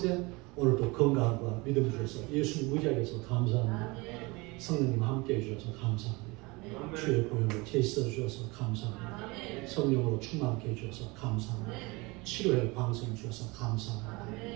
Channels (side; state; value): left; quieter; 25.1 dB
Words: 오늘도 건강과 믿음 주셔서 예수님 의지하게 해서 감사합니다. 성령님 함께 해주셔서 감사합니다. 주의 보혈로 제시어 주셔서 감사합니다. 성령으로 충만케 해주셔서 감사합니다. 치료의 방송 주셔서